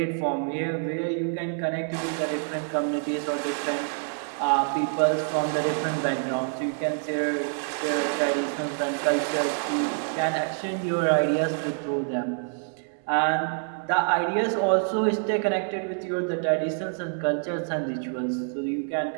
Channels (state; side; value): silent; left; 60 dB below the other